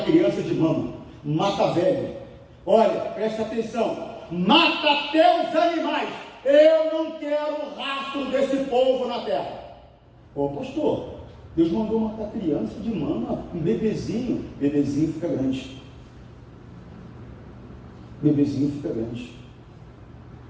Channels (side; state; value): both; identical; correlation 1.00